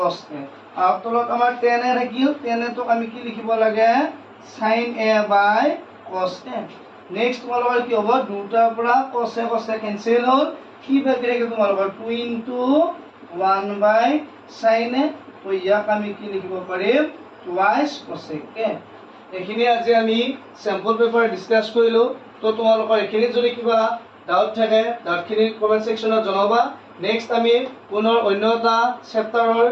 a আৰু তলত আমাৰ tan এ থাকিল tan এ টোক আমি কি লিখিব লাগে sin a by cos a next তোমালোকৰ কি হ'ব দুটাৰ পৰা cos a কেনসেল হ'ল কি বাকি থাকে তোমালোকৰ 2 into 1 by sin a তো ইয়াক আমি কি লিখিব পাৰিম twice cosec a এখিনি আজি আমি স্যাম্পল পেপাৰ ডিসকাস কৰিলো তো তোমালোকৰ এখিনি যদি কিবা ডাউট থাকে ডাউটখিনি কমেন্ট সেকশনত জনাবা নেক্সট আমি পুনৰ অন্য এটা চেপ্টাৰৰ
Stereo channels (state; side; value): identical; both; correlation 1.00